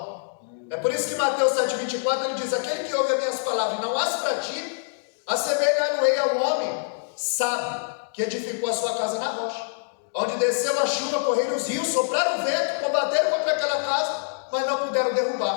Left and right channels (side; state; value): right; silent; digital silence